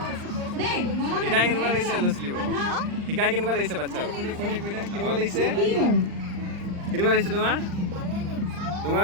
শিকাই কেনেকুৱা লাগিছে ল'ৰা ছোৱালীবোৰ? শিকাই কেনেকুৱা লাগিছে বাচ্ছা? কেনেকুৱা লাগিছে? কেনেকুৱা লাগিছে তোমাৰ?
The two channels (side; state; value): left; late; 39 ms